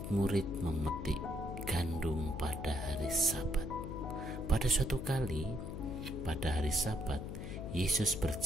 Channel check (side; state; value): left; noise; hum, 6 dB below the sound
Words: memetik gandum pada hari Sabat. Pada suatu kali, pada hari Sabat, Yesus